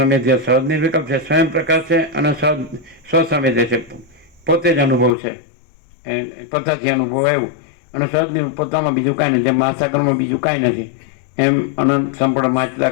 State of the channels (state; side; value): drops out; right; at 5.2 s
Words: સહજ નિર્વિકલ્પ છે, સ્વયં પ્રકાશ છે અને સ્વસંવેદ્ય છે, પોતે જ અનુભવ છે, પોતાથી અનુભવ આવ્યું. અને સહજ પોતામાં બીજું કાંઈ નથી. જેમ મહાસાગરમાં બીજું કાંઈ નથી, એમ અનંત સંપૂર્ણ